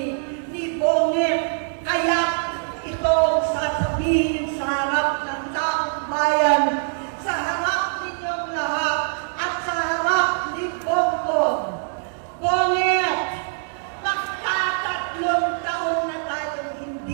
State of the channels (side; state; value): left; silent; digital silence